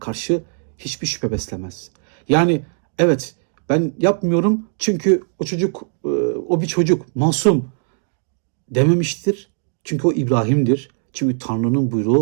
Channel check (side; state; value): left; silent; digital silence